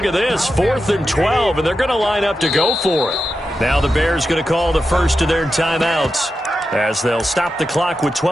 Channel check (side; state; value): both; normal; correlation 0.89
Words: at this, 4th and 12, and they're going to line up to go for it. Now the Bears going to call the first of their timeouts as they'll stop the clock with